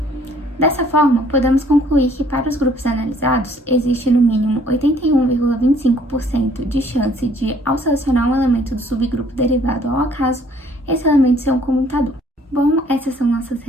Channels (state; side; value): normal; both; correlation 0.60